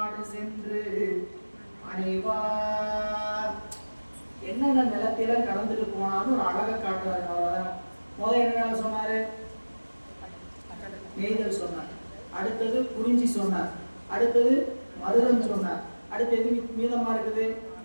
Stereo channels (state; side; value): inverted; both; correlation -1.00